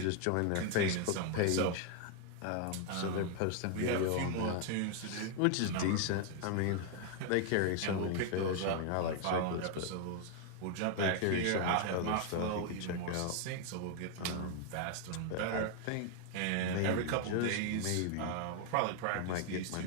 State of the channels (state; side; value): different; both; correlation 0.00